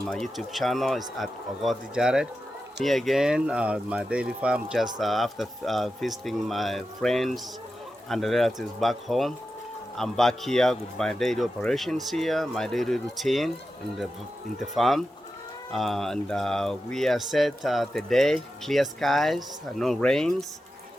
my YouTube channel. It's at Ogot Jared. Me again, my daily farm, just after visiting my friends and relatives back home. I'm back here with my daily operations here, my daily routine in the farm. And we are set today, clear skies, no rains.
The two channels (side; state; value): both; normal; correlation 0.91